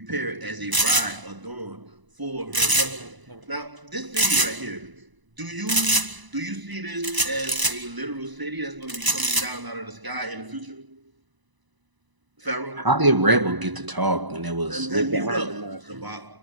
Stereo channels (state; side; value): late; left; 1.0 ms